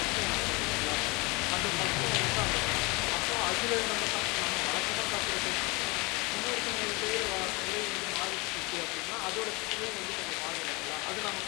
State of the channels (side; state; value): right; quieter; 26.3 dB